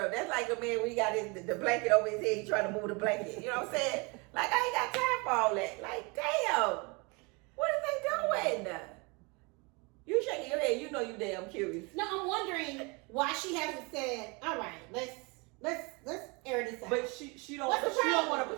That's like the man when he got the blanket over his head, he trying to move the blanket. You know what I'm saying? Like, I ain't got time for all that. Like, damn, what are they doing? You shaking your head, you know you damn curious. No, I'm wondering why she hasn't said, all right, let's air this out. But she don't. What's the She don't problem? want to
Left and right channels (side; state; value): left; quieter; 29.2 dB